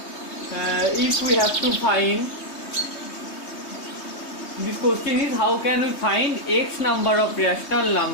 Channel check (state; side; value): late; right; 3.2 ms